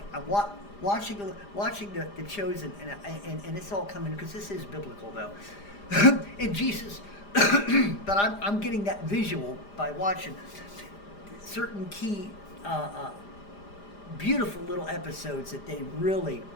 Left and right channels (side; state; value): right; late; 4.9 ms